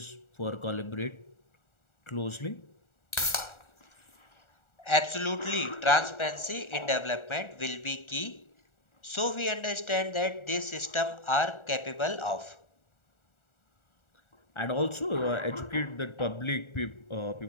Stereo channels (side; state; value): right; late; 1.4 ms